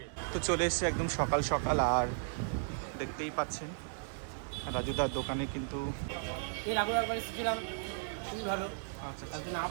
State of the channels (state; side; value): silent; left; digital silence